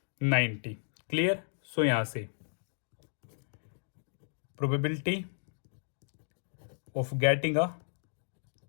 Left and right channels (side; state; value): right; silent; digital silence